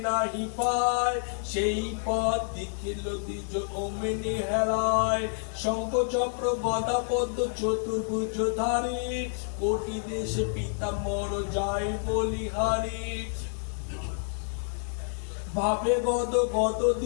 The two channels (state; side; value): silent; right; 59 dB below the other